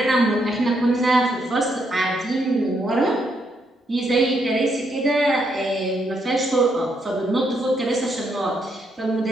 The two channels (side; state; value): both; normal; correlation 0.76